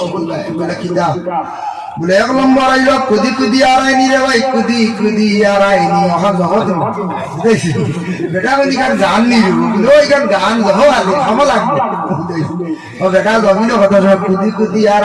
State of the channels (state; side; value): identical; both; correlation 1.00